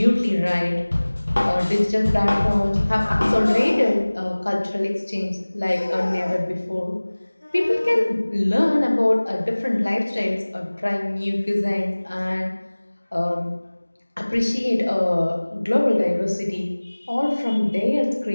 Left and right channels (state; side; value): inverted; both; correlation -1.00